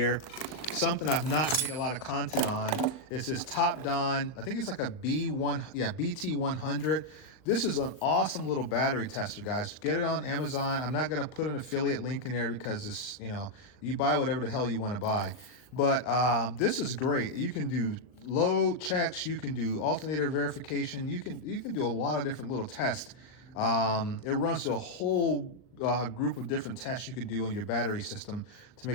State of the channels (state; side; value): late; right; 39 ms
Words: something I've not made a lot of content on is this Top Don. I think it's like a BT100. This is an awesome little battery tester, guys. Get it on Amazon. I'm not going to put an affiliate link in there because this, you buy whatever the hell you want to buy. But this is great. You can do load checks. You can do alternator verification. You can do a lot of different little tests. It runs through a whole group of different tests you can do on your battery system to